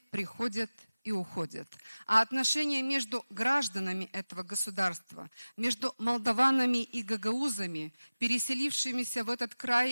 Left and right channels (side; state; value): both; inverted; correlation -0.98